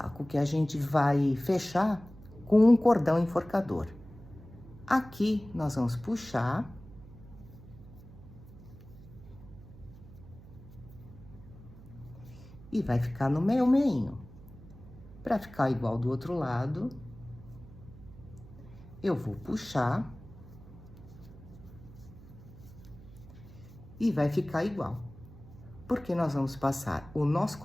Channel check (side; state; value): right; noise; hum, 18 dB below the sound